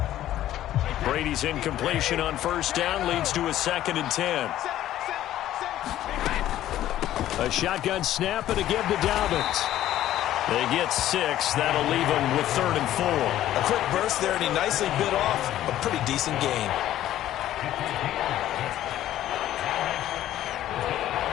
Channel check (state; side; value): quieter; right; 13.0 dB